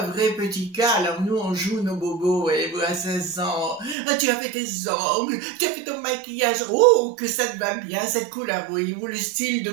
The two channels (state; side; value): drops out; left; at 4.0 s